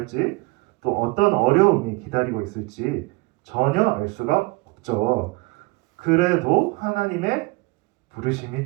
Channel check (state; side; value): quieter; left; 24.7 dB